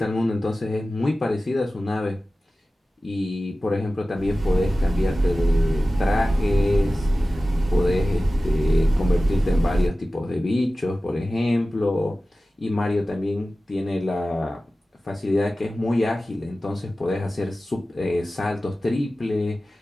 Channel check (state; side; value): normal; both; correlation 0.96